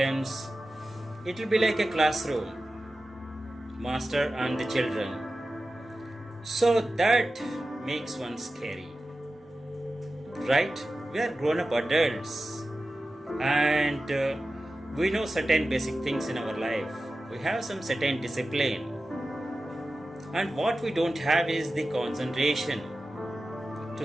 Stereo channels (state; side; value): normal; both; correlation 0.94